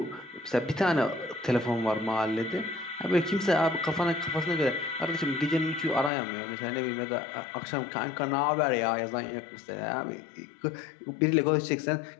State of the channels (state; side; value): drops out; right; at 6.1 s